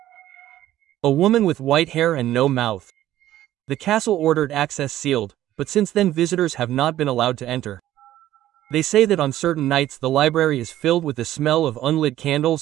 A woman with white hair and no mouth. The castle ordered access sealed, but since then visitors have not been allowed to enter. They say that on certain nights the library is filled with the smell of unlit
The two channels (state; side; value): quieter; left; 13.5 dB